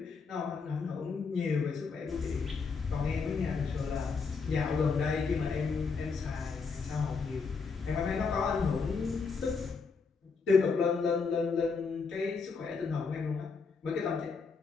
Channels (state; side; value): quieter; right; 5.0 dB